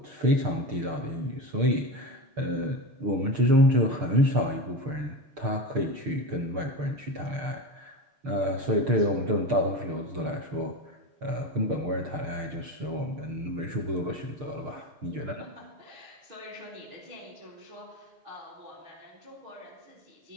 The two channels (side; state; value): left; late; 6.6 ms